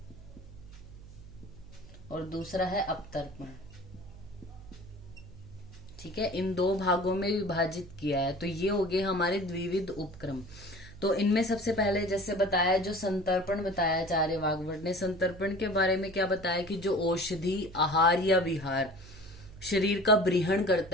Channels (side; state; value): right; noise; hum, 18 dB below the sound